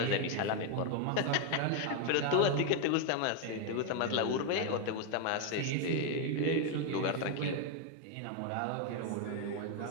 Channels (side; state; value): both; different; correlation 0.01